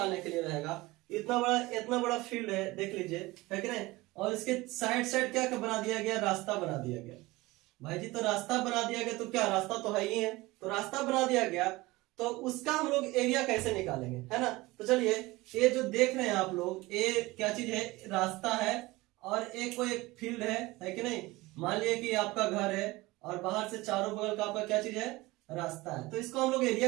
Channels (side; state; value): left; quieter; 20.7 dB